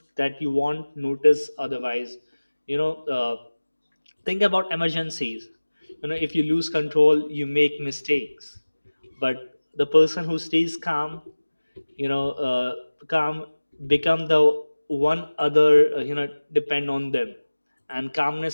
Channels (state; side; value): inverted; both; correlation -1.00